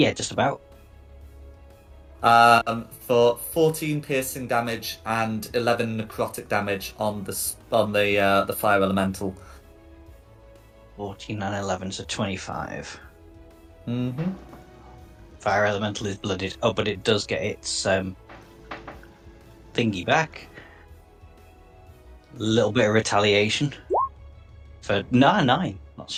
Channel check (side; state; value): both; identical; correlation 1.00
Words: just about. For 14 piercing damage and 11 necrotic damage on the fire elemental. 14 and 11, so 25. Mm-hmm. Fire elemental is blooded. Oh, but it does get its thingy back. A little bit of retaliation. For 9, not